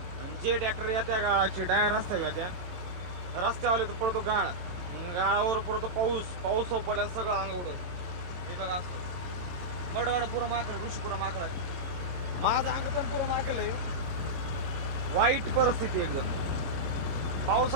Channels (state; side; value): late; left; 22 ms